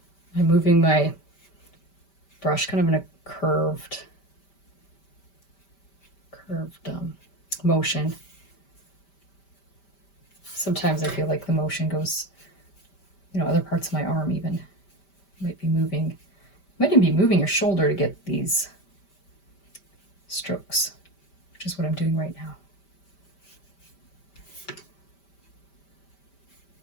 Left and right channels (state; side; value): late; right; 5.1 ms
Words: I'm moving my brush kind of in a curved motion. Sometimes I feel like the motion goes, other parts of my arm even might even be moving your shoulder to get these strokes, which is what I'm doing right now.